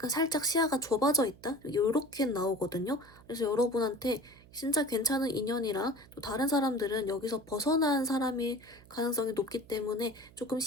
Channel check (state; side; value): noise; right; hum, 23 dB below the sound